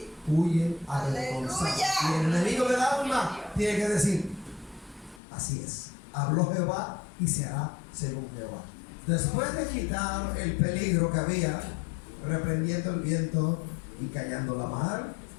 huyen avergonzadas. Y el enemigo del alma tiene que decir: así es, habló Jehová y se hará según Jehová. Después de quitar el peligro que había, reprendiendo el viento y callando la mar,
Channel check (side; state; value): right; drops out; at 5.2 s